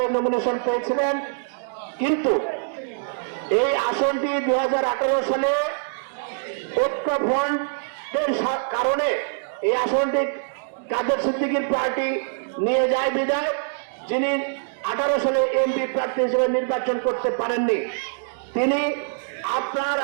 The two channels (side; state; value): left; silent; digital silence